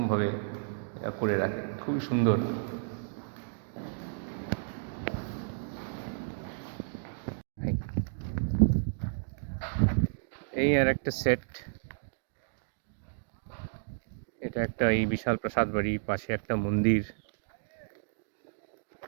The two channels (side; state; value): left; silent; digital silence